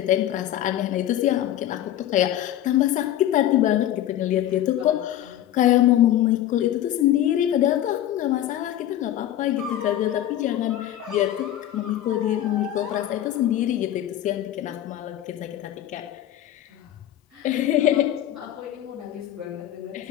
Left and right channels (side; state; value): right; quieter; 12.3 dB